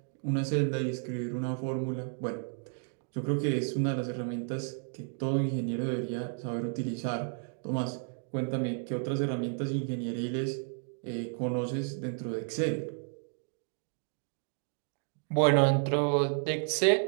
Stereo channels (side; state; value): left; silent; 55 dB below the other